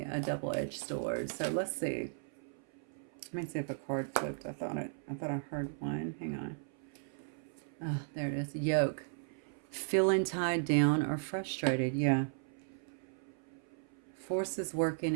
a double-edged sword. So let's see. Let me see if a card flipped. I thought I heard one. Hang on. Oh, there it is. Yoke. Feeling tied down or frustrated. Yeah. Forces working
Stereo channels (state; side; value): silent; left; 54 dB below the other